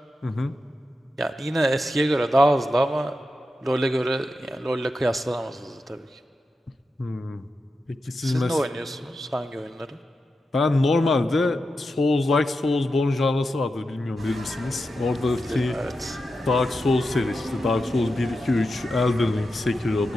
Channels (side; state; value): both; normal; correlation 0.89